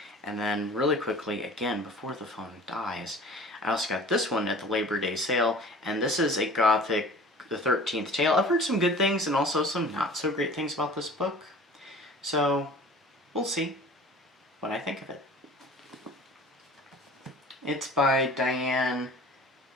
And then really quickly, again, before the phone dies, I also got this one at the Labor Day sale, and this is a Gothic, the 13th Tale. I've heard some good things and also some not so great things about this book. So, we'll see what I think of it. It's by Diane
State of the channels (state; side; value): normal; both; correlation 0.44